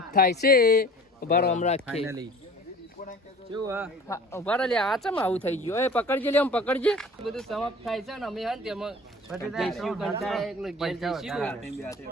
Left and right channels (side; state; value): both; normal; correlation 0.45